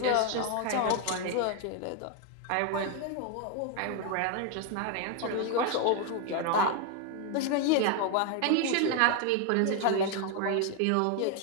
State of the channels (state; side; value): different; both; correlation 0.01